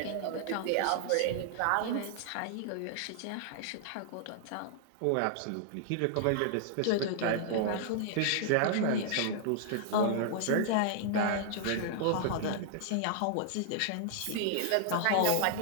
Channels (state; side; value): different; both; correlation -0.01